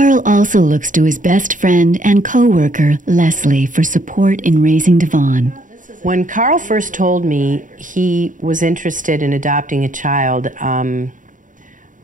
also looks to his best friend and co-worker, Leslie, for support in raising Devon. When Carl first told me he was interested in adopting a child,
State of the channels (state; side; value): late; left; 0.38 ms